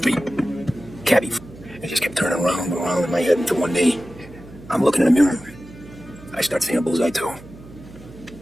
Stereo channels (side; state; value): right; noise; hum, 19 dB below the sound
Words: me? Cabby. I just kept turning around and around in my head until one day, I'm looking in the mirror. I start seeing a bullseye too.